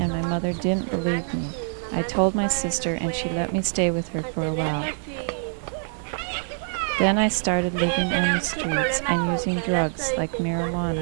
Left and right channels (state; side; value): silent; left; 62 dB below the other